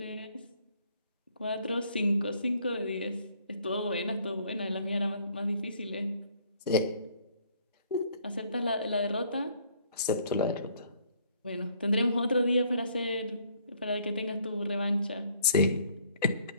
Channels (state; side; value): inverted; both; correlation -0.62